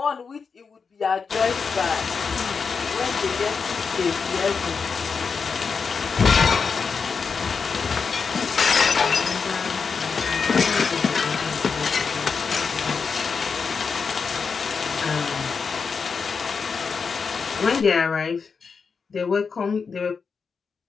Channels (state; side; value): quieter; right; 5.4 dB